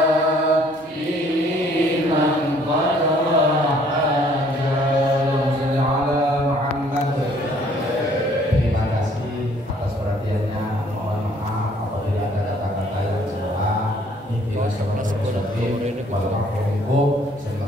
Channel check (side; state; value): both; normal; correlation 0.60